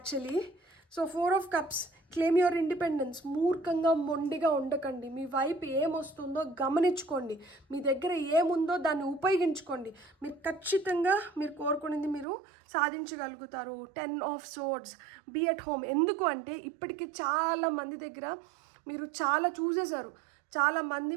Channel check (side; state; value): left; drops out; at 12.2 s